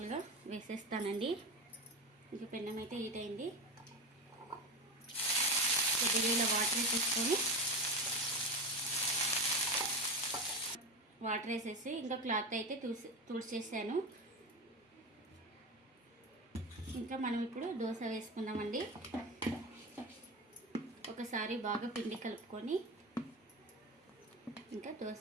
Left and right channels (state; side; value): normal; both; correlation 0.21